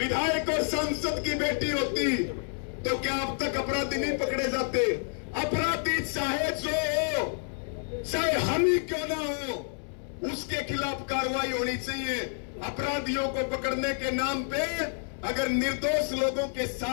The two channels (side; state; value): right; silent; 59 dB below the other